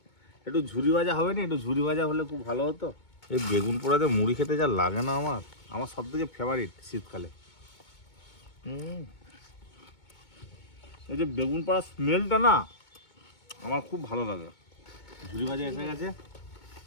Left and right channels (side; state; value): right; late; 2.2 ms